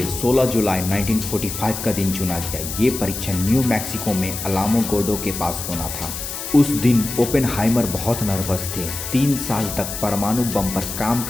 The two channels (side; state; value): left; noise; hiss, 7 dB below the sound